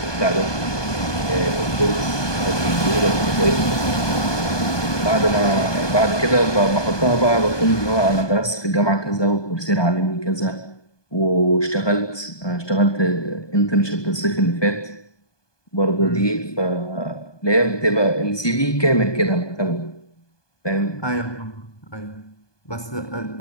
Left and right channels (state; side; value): late; right; 1.2 ms